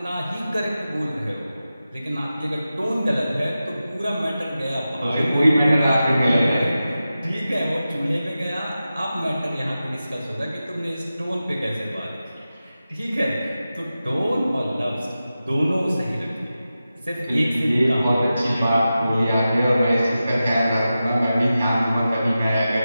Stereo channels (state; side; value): inverted; both; correlation -0.93